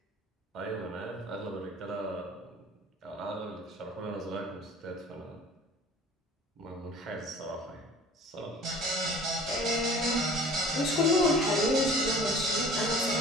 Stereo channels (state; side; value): normal; both; correlation 0.47